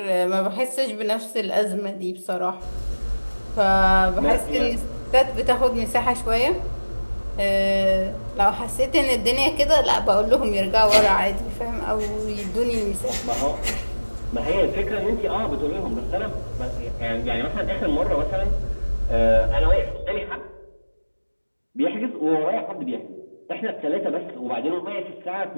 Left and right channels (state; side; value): inverted; both; correlation -1.00